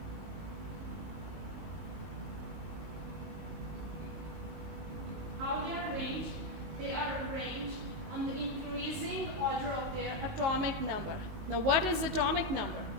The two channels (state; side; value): late; left; 19 ms